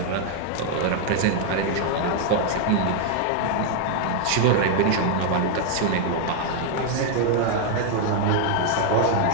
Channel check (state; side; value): different; both; correlation 0.00